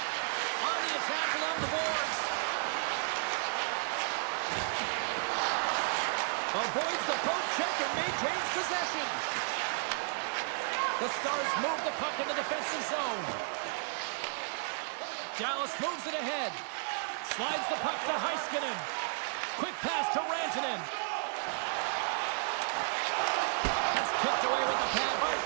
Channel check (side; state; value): left; silent; 56 dB below the other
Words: On the attack along the boards. Avoids the poke check and maintains possession. The Stars move the puck in the defensive zone. Dallas moves it ahead. Slides the puck to Heiskanen. Quick pass to Rantanen. That's kicked away with a pad by